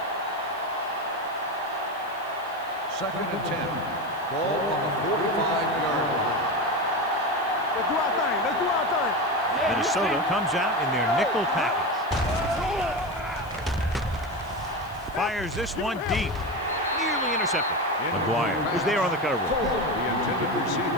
2nd and 10. Ball on the 45-yard line. Let's do our thing. Let's do our thing. Minnesota comes out in their nickel package. Fires this one deep. Nearly intercepted. McGuire was there on the coverage. The intended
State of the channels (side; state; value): left; noise; hiss, 25 dB below the sound